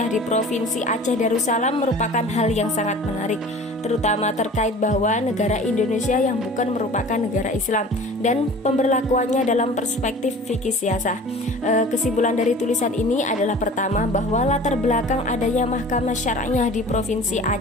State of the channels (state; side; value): normal; both; correlation 0.43